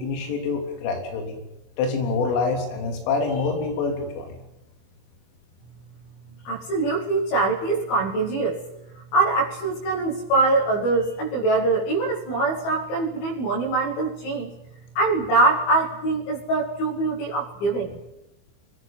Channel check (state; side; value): late; right; 25 ms